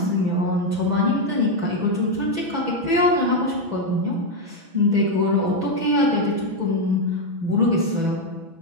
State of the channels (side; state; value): left; late; 6.1 ms